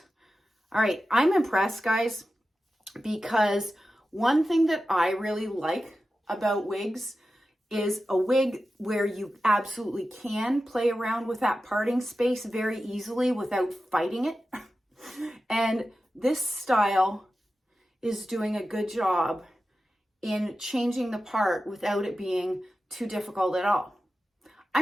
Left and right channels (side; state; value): both; normal; correlation 0.93